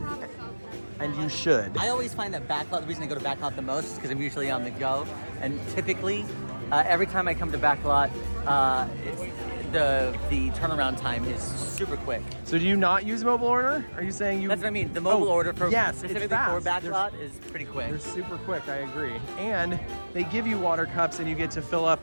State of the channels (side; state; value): both; inverted; correlation -1.00